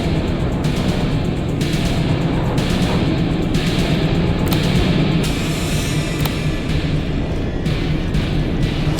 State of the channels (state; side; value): identical; both; correlation 1.00